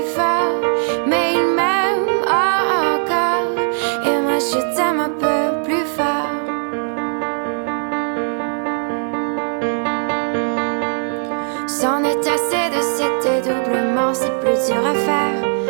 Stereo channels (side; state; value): left; silent; 57 dB below the other